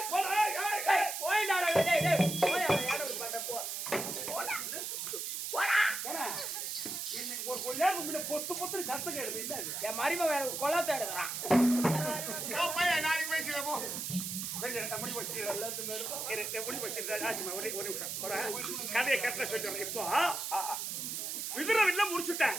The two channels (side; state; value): right; noise; hiss, 4 dB below the sound